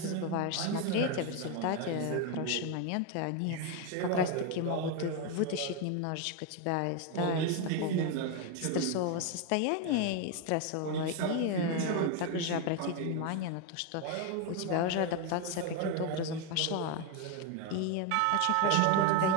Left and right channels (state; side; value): different; both; correlation 0.01